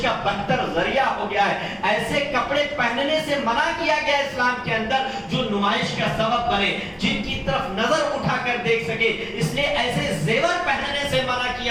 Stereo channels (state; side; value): identical; both; correlation 1.00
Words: کا بدتر ذریعہ ہو گیا ہے. ایسے کپڑے پہننے سے منع کیا گیا اسلام کے اندر جو نمائش کا سبب بنے, جن کی طرف نظر اٹھا کر دیکھ سکے. اس لیے ایسے زیور پہننے سے منع